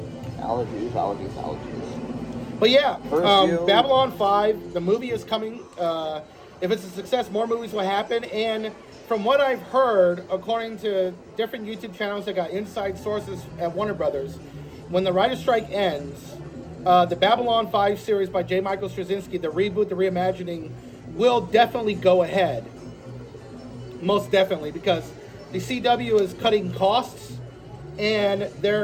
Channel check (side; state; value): both; identical; correlation 1.00